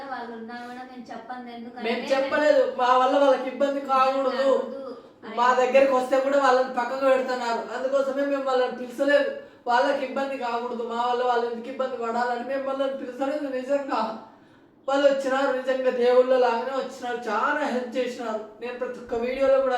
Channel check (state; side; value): identical; both; correlation 1.00